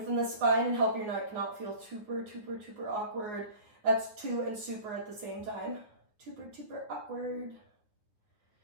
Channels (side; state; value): left; late; 9.5 ms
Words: the spine and help your neck not feel super awkward. That's two and super at the same time. Super awkward.